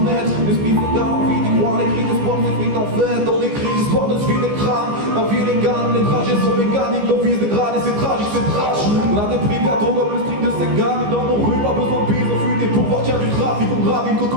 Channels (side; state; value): left; late; 15 ms